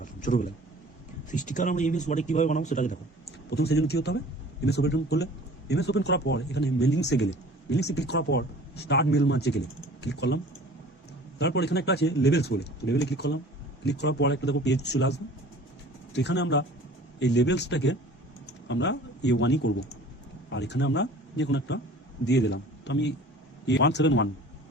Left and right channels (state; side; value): normal; both; correlation 0.46